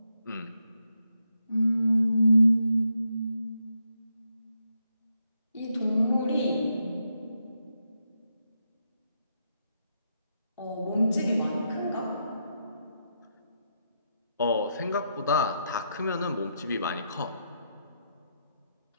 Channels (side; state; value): both; inverted; correlation -0.81